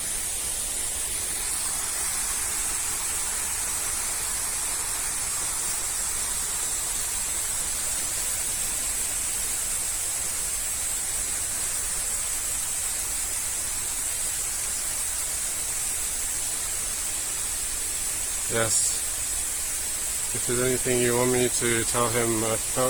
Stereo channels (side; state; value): right; noise; rumble, 10 dB below the sound